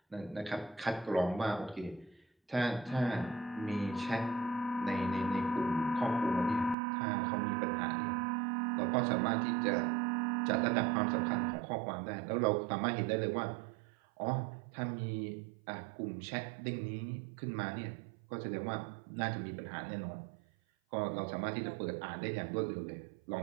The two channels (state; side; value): drops out; left; at 6.8 s